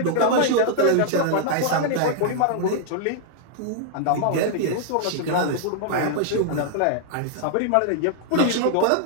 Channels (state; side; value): different; both; correlation -0.01